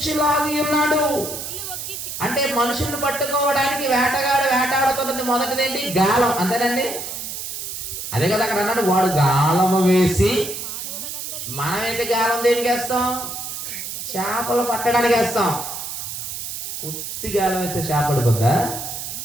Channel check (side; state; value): right; noise; hiss, 7 dB below the sound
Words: ఉన్నాడు. అంటే మనుషుల్ని పట్టుకోవడానికి వేటగాడు వేటాడుతున్నది మొదటిదేంటి? గాలం. అంతేనండి? అదే కదా అక్కడ అన్నాడు, వాడు గాలము వేసి. మనమైతే గాలం దేనికి వేస్తాం? చేపలు పట్టడానికి వేస్తాం. ఉత్తి గాలం అయితే చేప పడిపోద్దా?